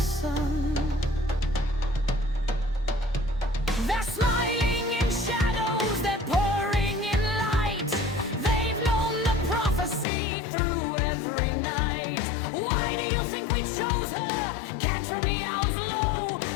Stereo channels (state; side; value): drops out; right; at 10.1 s